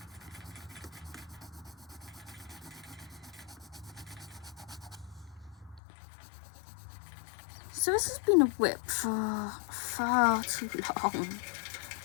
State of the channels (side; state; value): right; drops out; at 5.8 s